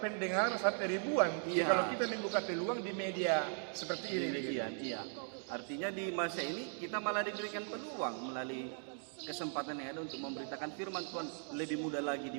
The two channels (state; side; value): silent; left; 52 dB below the other